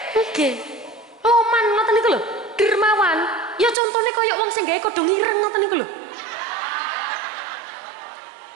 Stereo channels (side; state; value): left; drops out; at 3.8 s